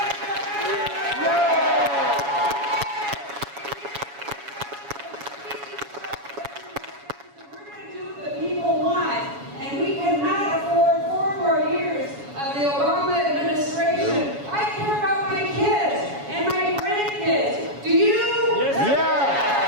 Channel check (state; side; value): late; left; 7.1 ms